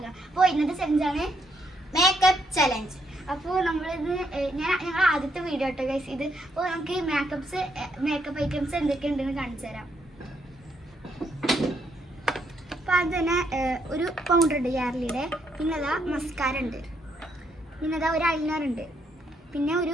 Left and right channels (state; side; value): normal; both; correlation 0.75